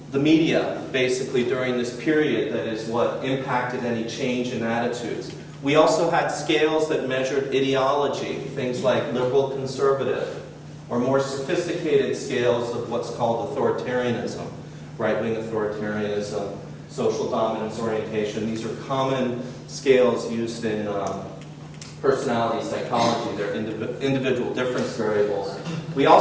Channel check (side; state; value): both; identical; correlation 1.00